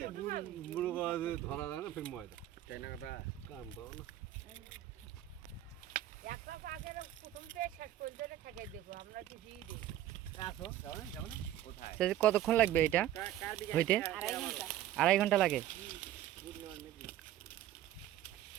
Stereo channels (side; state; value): left; quieter; 12.7 dB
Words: বুড়ো বাজে ধরা যায় না ফির ময়দা তাই না কথা কাম দাও না একটা আগে প্রথম থেকে শেষ পর্যন্ত ঠেকাই দেবো আমরা কিছুই দেই আসো যাও না কোথায় কতক্ষণ লাগবে এটা কার দিকে হইতে 2.5 ঘন্টা লাগে